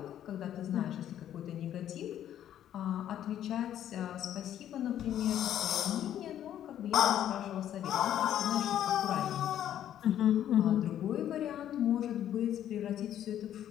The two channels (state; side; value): quieter; right; 11.0 dB